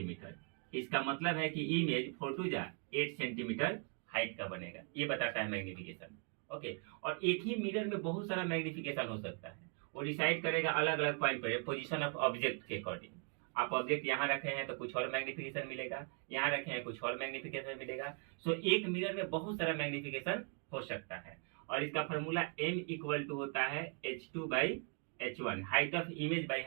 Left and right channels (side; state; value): left; quieter; 37.4 dB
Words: इसका मतलब है कि इमेज 4 टू 8 सेंटीमीटर हाइट का बनेगा। ये बताता है मैग्निफिकेशन। ओके, और एक ही मिरर में बहुत सारा मैग्निफिकेशन हो सकता है। वो डिसाइड करेगा अलग अलग पॉइंट पर पोजीशन ऑफ ऑब्जेक्ट के अकॉर्डिंग। आप ऑब्जेक्ट यहाँ रखे हैं तो कुछ और मैग्निफिकेशन मिलेगा, यहाँ रखे हैं कुछ और मैग्निफिकेशन मिलेगा। सो एक मिरर में बहुत सारा मैग्निफिकेशन हो सकता है। और इसका फॉर्मूला m इक्वल टू होता है h2/h1, height of image by